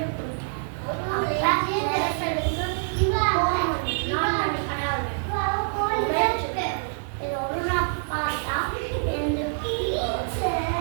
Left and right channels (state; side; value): silent; left; 61 dB below the other